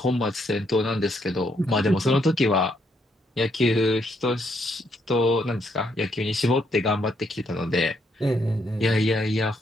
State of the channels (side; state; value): both; normal; correlation 0.74